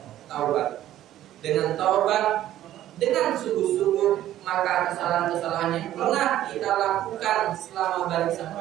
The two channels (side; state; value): left; quieter; 13.0 dB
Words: taubat. Dengan taubat, dengan sungguh-sungguh, maka kesalahan-kesalahan yang pernah kita lakukan selama balik